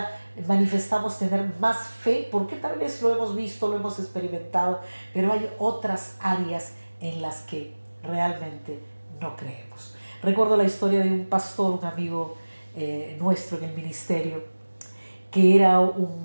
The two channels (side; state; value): both; inverted; correlation -1.00